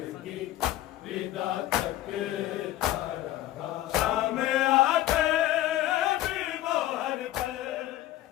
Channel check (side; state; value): right; quieter; 14.6 dB